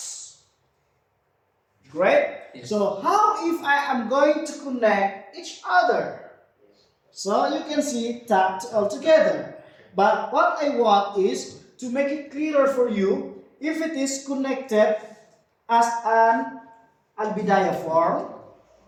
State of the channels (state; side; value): identical; both; correlation 1.00